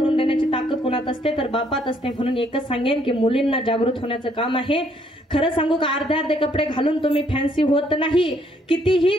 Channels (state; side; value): normal; both; correlation 0.68